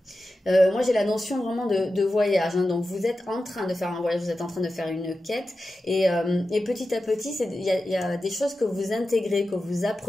Moi j'ai la notion vraiment de voyage, hein. Donc vous êtes en train de faire un voyage, vous êtes en train de faire une quête et petit à petit il y a des choses que vous intégrez, que vous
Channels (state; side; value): normal; both; correlation 0.92